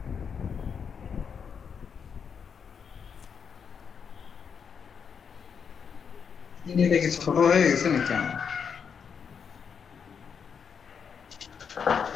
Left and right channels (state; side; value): quieter; right; 6.7 dB